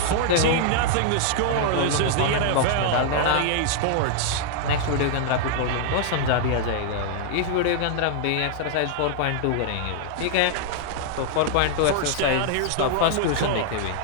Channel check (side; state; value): both; different; correlation -0.01